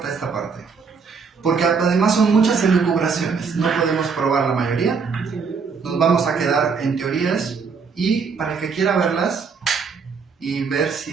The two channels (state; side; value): quieter; left; 5.4 dB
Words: esta parte, porque además son muchas elucubraciones. No podemos probar la mayoría. Nos vamos a quedar en teorías y para el que quiera verlas y ver